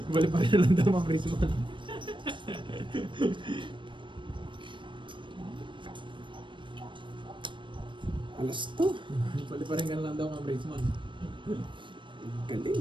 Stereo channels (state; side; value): late; left; 0.24 ms